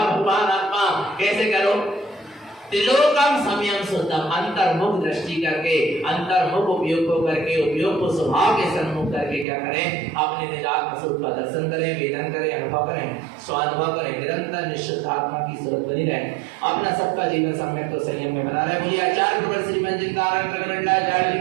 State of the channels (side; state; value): left; drops out; at 9.5 s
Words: आत्मा कैसे करो? त्रिलोकम समयम शुद्धम, अंतर्मुख दृष्टि करके, अंतर्मुख उपयोग को करके, उपयोग को स्वभाव के सन्मुख करके क्या करें? अपने निजात्म स्वरूप का दर्शन करें, वेदन करें, अनुभव करें, स्वानुभव करें, निरंतर निश्चित आत्मा की सूरत बनी रहे। अपना सबका जीवन सम्यक तो संयम में बना रहे। बोलिए आचार्य श्रीमंत जी